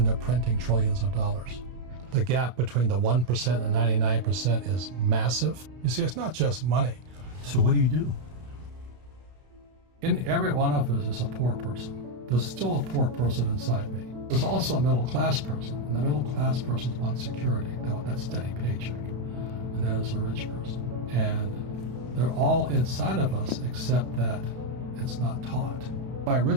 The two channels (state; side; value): late; left; 32 ms